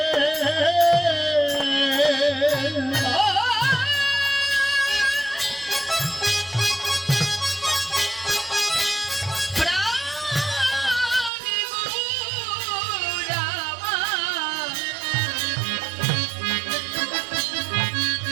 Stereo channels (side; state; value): left; drops out; at 11.3 s